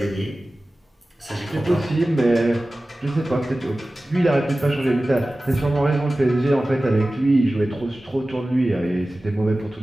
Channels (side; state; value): both; normal; correlation 0.96